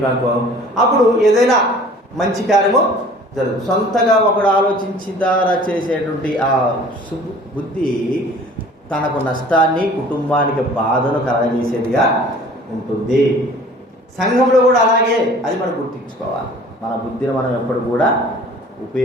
అప్పుడు ఏదైనా మంచి కార్యము జరుగుతుంది. సొంతగా ఒకడు ఆలోచించిన ద్వారా చేసేటువంటి ఆ బుద్ధి తనకు నష్టాన్ని, కుటుంబానికి బాధను కలగజేసేదిగా ఉంటుంది. సంఘంలో కూడా అలాగే, అది మనం గుర్తించుకోవాలి. మన బుద్ధిని మనం ఎప్పుడు కూడా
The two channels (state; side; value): normal; both; correlation 0.49